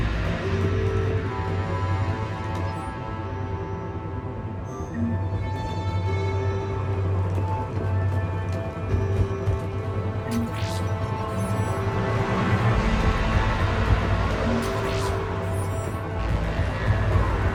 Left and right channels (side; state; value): both; identical; correlation 1.00